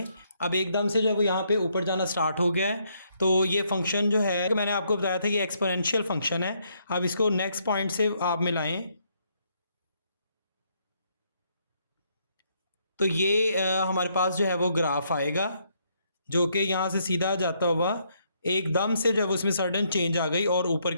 अब एकदम से जो है वो यहाँ पे ऊपर जाना स्टार्ट हो गया है। तो ये फंक्शन जो है मैंने आपको बताया था कि एक्सपोनेंशियल फंक्शन है। अब इसको नेक्स्ट पॉइंट से आप मिलाएं, तो ये हमारे पास जो है वो ग्राफ आएगा जो कि यहाँ से सीधा जाता हुआ एकदम से जो है वो उसमें सडन चेंज आ गई और ऊपर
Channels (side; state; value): both; inverted; correlation -0.73